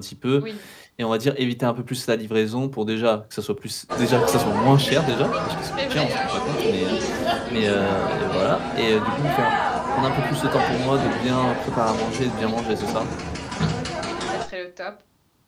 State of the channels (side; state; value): both; identical; correlation 1.00